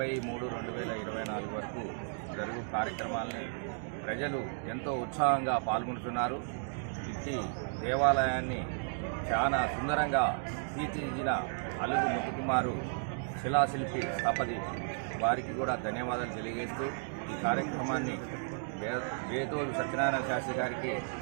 వరకు జరుగు కార్యక్రమాలని ప్రజలు ఎంతో ఉత్సాహంగా పాల్గొంటున్నారు. ఇట్టి దేవాలయాన్ని చాలా సుందరంగా తీర్చిదిద్దిన అలుగు ముత్తుకుమారు శిలాశిల్పి స్థపతి వారికి కూడా ధన్యవాదాలు తెలియజేస్తూ ఈ కార్యక్రమాన్ని బేతోలు సత్యనారాయణ శాస్త్రి గారికి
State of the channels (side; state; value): left; silent; digital silence